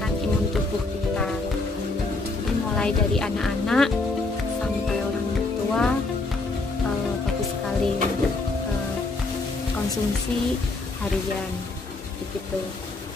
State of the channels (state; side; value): quieter; right; 3.3 dB